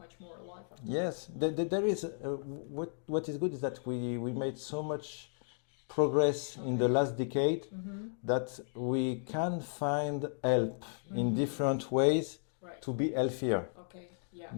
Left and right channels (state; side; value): silent; right; digital silence